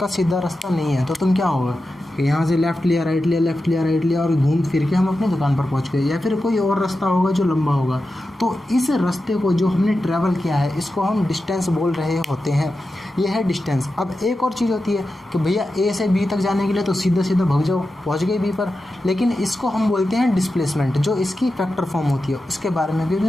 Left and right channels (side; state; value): both; normal; correlation 0.91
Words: सीधा रास्ता नहीं है, तो तुम क्या होगा कि यहाँ से लेफ़्ट लिया, राइट लिया, लेफ़्ट लिया, राइट लिया और घूम फिर के हम अपनी दुकान पर पहुँच गए। या फिर कोई और रास्ता होगा जो लंबा होगा, तो इस रास्ते को जो हमने ट्रैवल किया है इसको हम डिस्टेंस बोल रहे होते हैं। ये है डिस्टेंस। अब एक और चीज़ होती है कि भैया ए से बी तक जाने के लिए तो सीधा सीधा भाग जाओ, पहुँच गए बी पर, लेकिन इसको हम बोलते हैं डिस्प्लेसमेंट, जो इसकी फैक्टर फॉर्म होती है। उसके बारे में भी